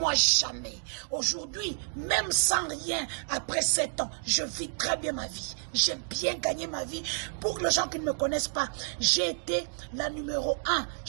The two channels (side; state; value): left; silent; digital silence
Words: jamais. Aujourd'hui, même sans rien, après 7 ans, je vis très bien ma vie. J'ai bien gagné ma vie. Pour les gens qui ne me connaissent pas, j'ai été la numéro 1,